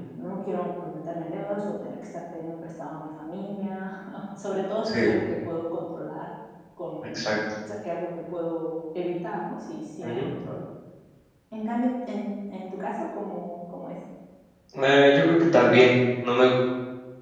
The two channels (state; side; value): identical; both; correlation 1.00